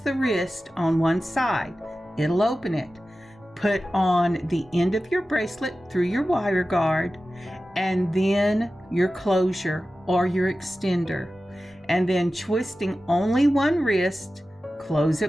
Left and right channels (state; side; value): normal; both; correlation 0.94